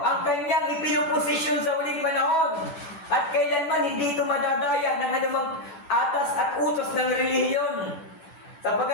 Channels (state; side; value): late; right; 10 ms